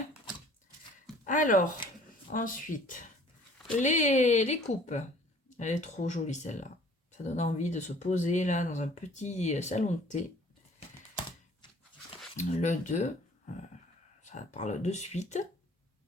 Alors, ensuite, les coupes. Elle est trop jolie celle-là. Ça donne envie de se poser là dans un petit salon de thé. Le 2, ça parle de suite.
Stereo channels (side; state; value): both; normal; correlation 0.53